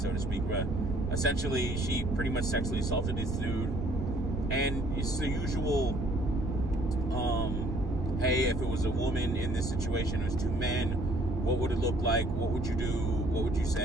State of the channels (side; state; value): right; noise; rumble, 2 dB below the sound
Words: to speak. But essentially, she pretty much sexually assaulted this dude, and it's the usual, hey, if it was a woman in this situation, it was two men, what would it look like? What would you do? What would you